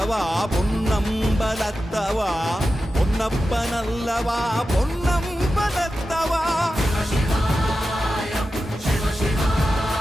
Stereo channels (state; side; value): normal; both; correlation 0.92